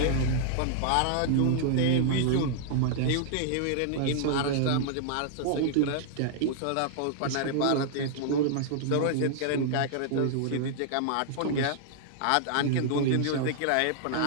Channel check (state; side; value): different; both; correlation -0.01